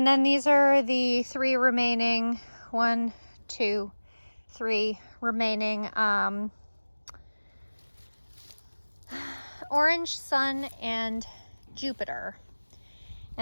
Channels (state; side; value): inverted; both; correlation -1.00